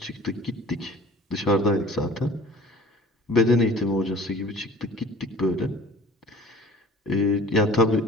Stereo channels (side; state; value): both; normal; correlation 0.46